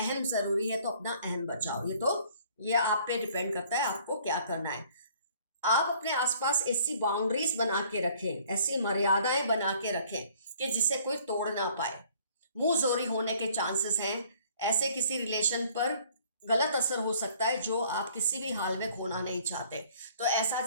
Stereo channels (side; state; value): both; inverted; correlation -0.57